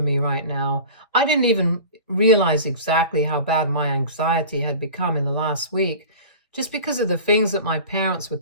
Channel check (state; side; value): inverted; both; correlation -0.36